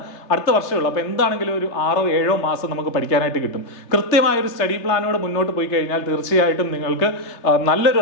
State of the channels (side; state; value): right; late; 3.3 ms